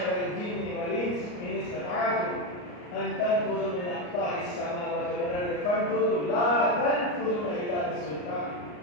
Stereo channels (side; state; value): right; late; 34 ms